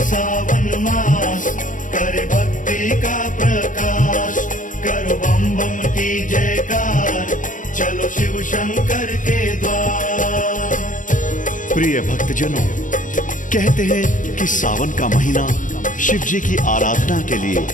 मास, करे भक्ति का प्रकाश। करो बम बम की जयकार, चलो शिव शंकर के द्वार। प्रिय भक्तजनों, कहते हैं कि सावन का महीना शिव जी की आराधना के लिए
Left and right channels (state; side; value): late; right; 0.38 ms